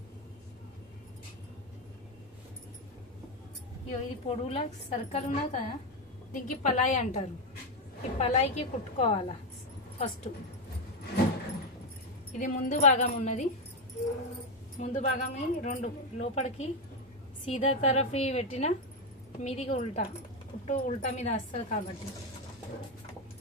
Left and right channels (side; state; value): both; normal; correlation 0.08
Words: ఇది పొడవులా సర్కిల్ ఉన్నది కదా, దీనికి పలాయి అంటారు. ఈ పలాయికి కుట్టుకోవాలా ఫస్ట్. ఇది ముందు భాగం ఉన్నది, ముందు భాగం రెండు లోపలికి సీదా తరఫీ పెట్టిన మీదికి ఉల్టా, కుట్టు ఉల్టా మీద వస్తుంది కాబట్టి.